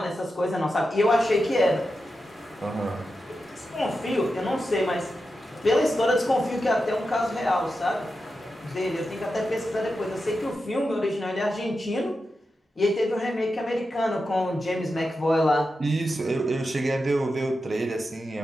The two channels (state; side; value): normal; both; correlation 0.90